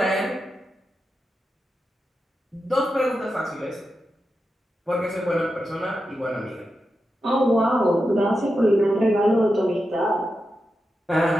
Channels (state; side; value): normal; both; correlation 0.89